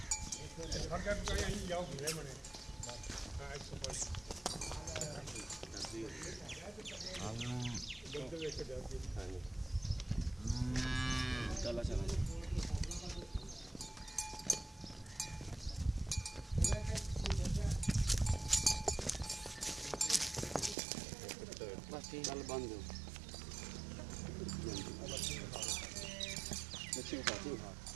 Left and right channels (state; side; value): drops out; left; at 20.8 s